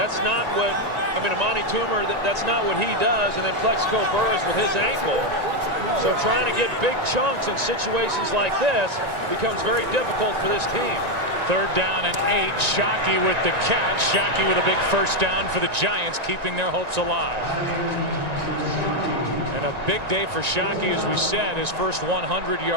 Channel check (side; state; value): left; late; 1.9 ms